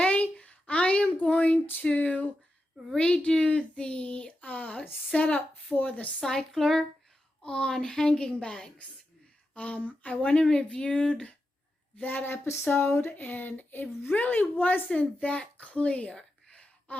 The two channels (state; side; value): normal; both; correlation 0.89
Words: I am going to redo the setup for the cycler on hanging bags. I went and reviewed that episode, and it really wasn't that clear